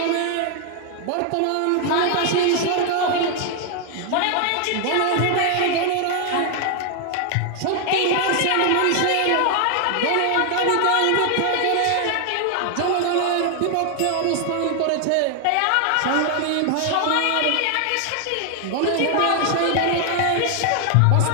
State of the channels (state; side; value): different; both; correlation 0.00